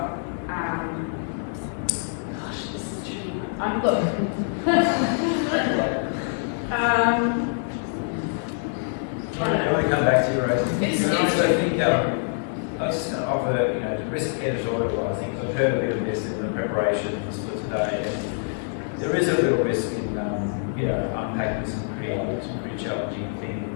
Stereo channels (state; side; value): silent; right; 62 dB below the other